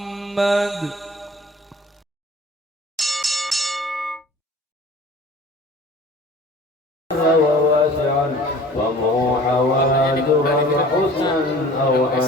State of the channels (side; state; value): both; normal; correlation 0.46